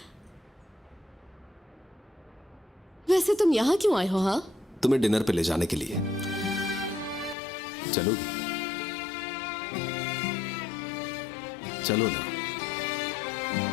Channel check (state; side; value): drops out; right; at 7.4 s